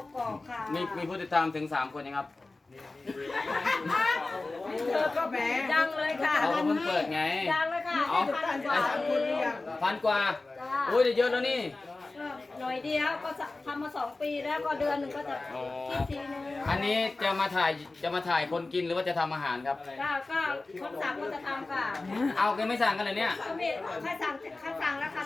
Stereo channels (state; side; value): quieter; right; 3.3 dB